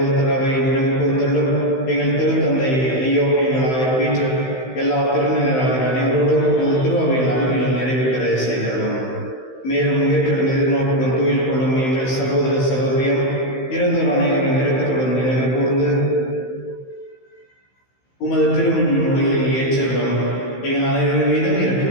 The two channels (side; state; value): right; late; 15 ms